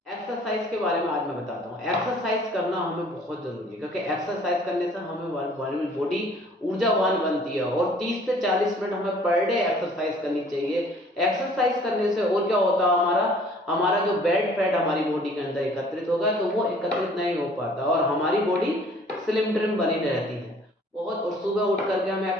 एक्सरसाइज के बारे में आज मैं बताता हूँ। एक्सरसाइज करना हमें बहुत जरूरी है, क्योंकि एक्सरसाइज करने से हमें बॉडी ऊर्जावान बनती है और 30 से 40 मिनट हमें पर डे एक्सरसाइज करनी चाहिए। एक्सरसाइज करने से और क्या होता है, हमारा जो बैड फैट हमारी बॉडी के अंदर एकत्रित होगा तो वो एकत्रित नहीं हो पाता और हमारी बॉडी स्लिम ट्रिम बनी रहती है। बहुत, और सुबह उठ करके हमें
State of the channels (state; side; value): normal; both; correlation 0.55